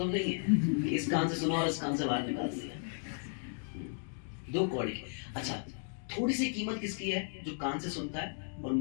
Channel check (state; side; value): silent; right; 55 dB below the other